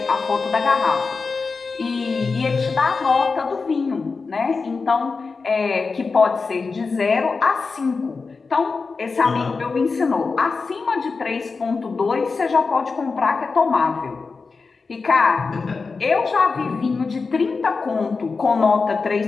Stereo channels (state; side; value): quieter; right; 4.5 dB